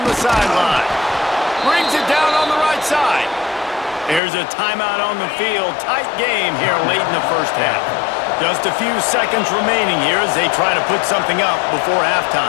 the sideline. Brings it down on the right side. There's a timeout on the field. Tight game here late in the first half. Just a few seconds remaining here as they try to put something up before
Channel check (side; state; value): right; drops out; at 4.2 s